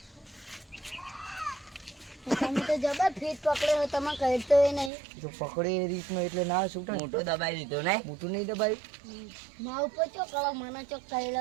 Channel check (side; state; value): left; drops out; at 4.9 s